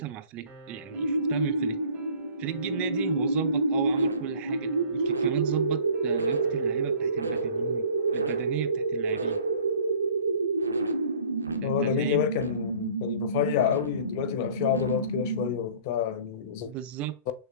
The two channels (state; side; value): inverted; both; correlation -0.50